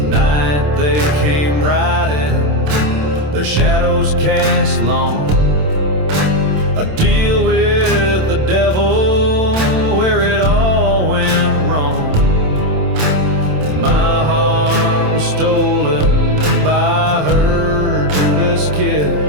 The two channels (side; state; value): left; late; 27 ms